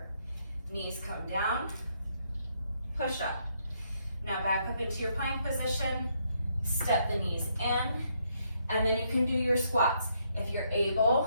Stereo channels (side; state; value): both; inverted; correlation -0.74